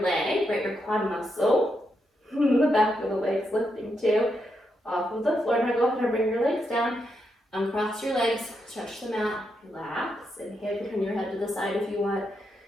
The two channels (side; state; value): both; normal; correlation 0.82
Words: leg, right, your quad muscle, the back of the legs lifting too, off of the floor. Now go ahead and bring your legs down, uncross your legs, stretch them out, relax, inhale, you can turn your head to the side if you want.